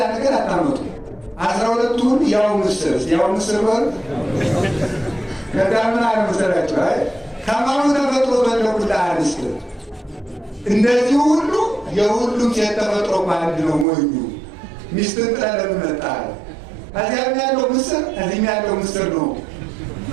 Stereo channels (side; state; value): left; drops out; at 13.9 s